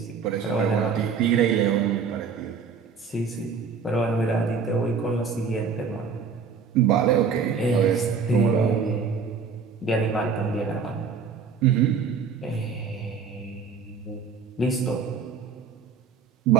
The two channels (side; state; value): left; quieter; 5.7 dB